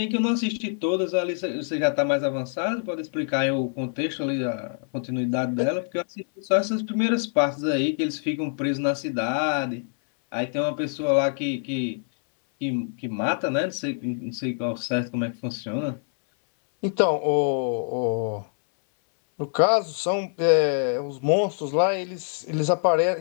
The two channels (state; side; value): silent; right; 60 dB below the other